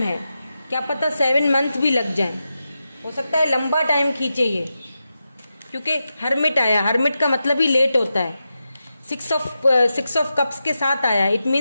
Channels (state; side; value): inverted; both; correlation -0.90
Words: है। क्या पता 7 मंथ भी लग जाए, हो सकता है लंबा टाइम खींचे ये, क्योंकि हर्मिट आया। हर्मिट का मतलब ही लेट होता है। 6 ऑफ कप्स के साथ आया, इट